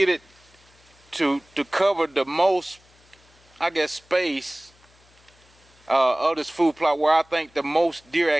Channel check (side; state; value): left; noise; hum, 30 dB below the sound